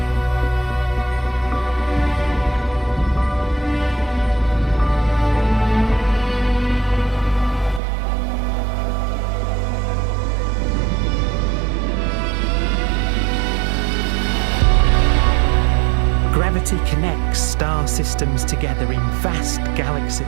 Gravity connects star systems together in vast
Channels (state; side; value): drops out; left; at 7.8 s